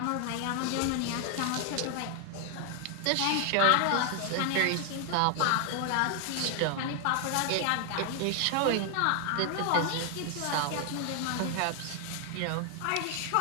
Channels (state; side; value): different; both; correlation 0.00